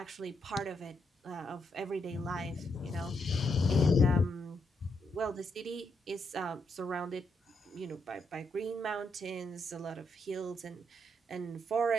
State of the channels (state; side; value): normal; both; correlation 0.79